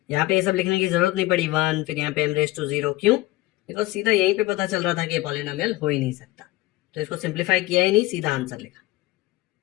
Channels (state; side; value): quieter; right; 18.5 dB